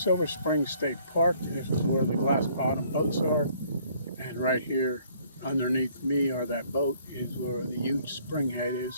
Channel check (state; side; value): inverted; both; correlation -0.61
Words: Spring State Park. This is where the glass bottom boats are. And right here underneath me, or that boat, is where the huge spring head